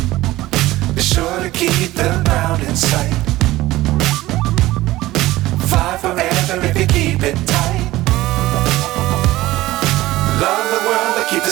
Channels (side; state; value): left; quieter; 17.2 dB